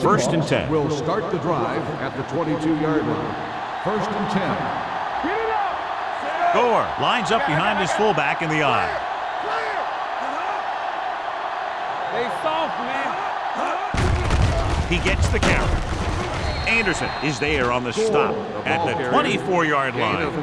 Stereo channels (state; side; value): identical; both; correlation 1.00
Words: and 10. Will start the drive at the 22-yard line. First and 10. Get it up. Gore lines up behind his fullback in the eye. They soft, man. He gets the carry. Anderson is there on the stop at the 24-yard